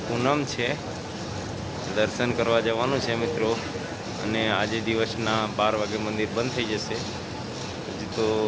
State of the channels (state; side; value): identical; both; correlation 1.00